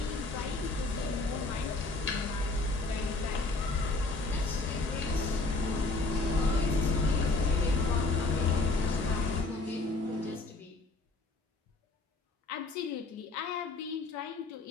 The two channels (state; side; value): quieter; right; 3.4 dB